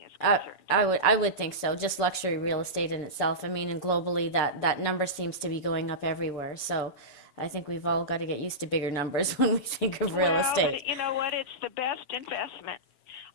is concerned. I would think so. Just luxury real estate in itself. I mean, and globally, that number seems to be going up everywhere. So I think we've all got to get used to bigger numbers when we think of real estate. But you know what? It's the best investment.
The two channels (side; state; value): right; late; 7.0 ms